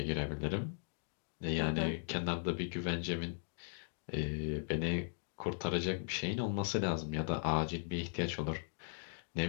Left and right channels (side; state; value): right; silent; digital silence